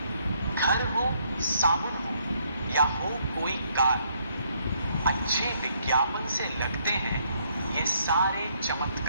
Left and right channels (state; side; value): inverted; both; correlation -0.69